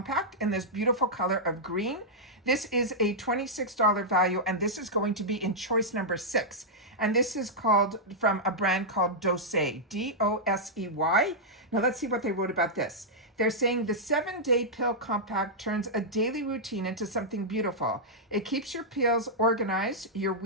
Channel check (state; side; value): normal; both; correlation -0.08